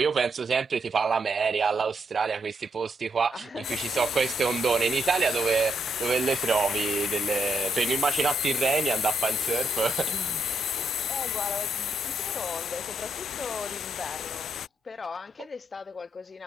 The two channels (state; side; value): normal; both; correlation 0.78